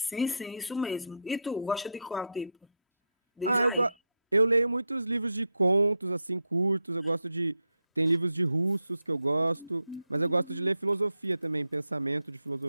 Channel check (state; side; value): inverted; both; correlation -0.81